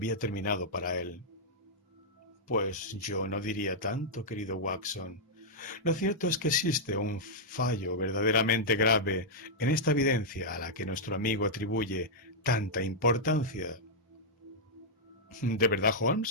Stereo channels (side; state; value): both; normal; correlation -0.08